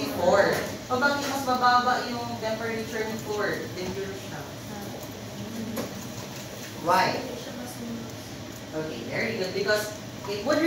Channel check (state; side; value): identical; both; correlation 1.00